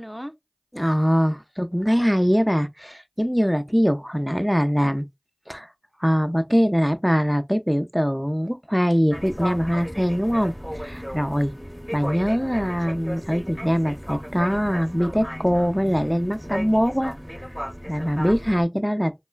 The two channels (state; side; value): identical; both; correlation 1.00